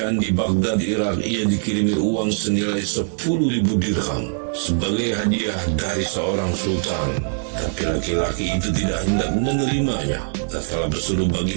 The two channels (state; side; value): silent; left; 60 dB below the other